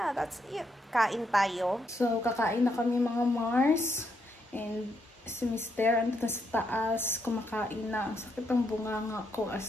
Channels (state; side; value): normal; both; correlation 0.77